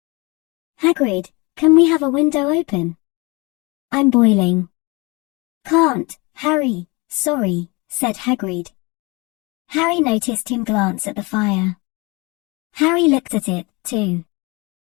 Hagrid, can we have a window open? I'm boiling. Can't, Harry, sorry, said Hagrid. Harry noticed him glance at the fire. Harry looked at it, too.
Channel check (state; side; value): quieter; right; 26.7 dB